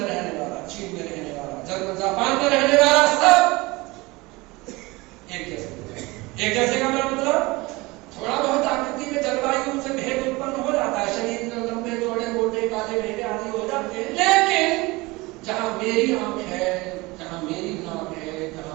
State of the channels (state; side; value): quieter; left; 22.7 dB